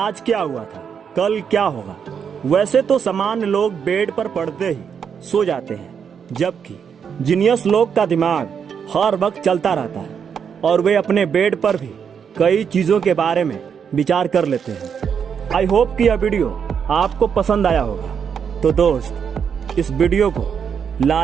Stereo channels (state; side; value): quieter; left; 7.2 dB